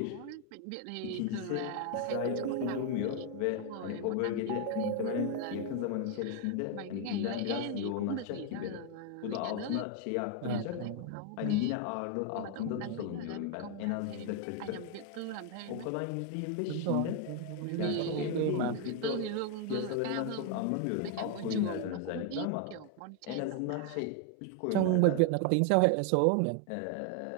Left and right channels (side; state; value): both; different; correlation 0.01